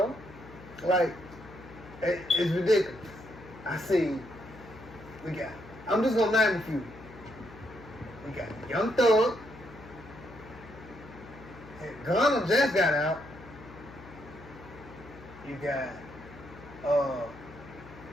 Like, it's ridiculous. I see, I'm just gonna name a few. We got Young Thug. Gunna just got out. You got,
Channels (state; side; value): noise; left; hum, 18 dB below the sound